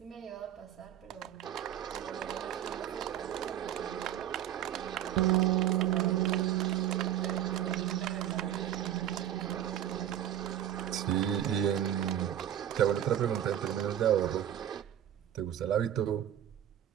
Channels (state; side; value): quieter; left; 10.9 dB